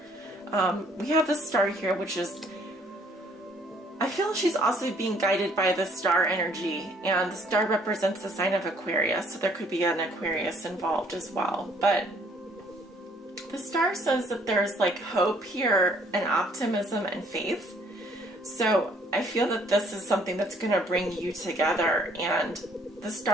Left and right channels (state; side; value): normal; both; correlation 0.62